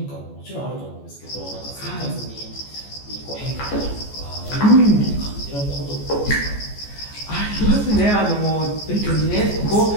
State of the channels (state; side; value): late; right; 14 ms